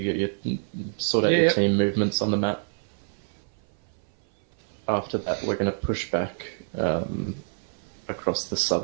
get your sort out your team movements on the map. After that, we're going to push back across the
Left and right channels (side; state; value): left; silent; 58 dB below the other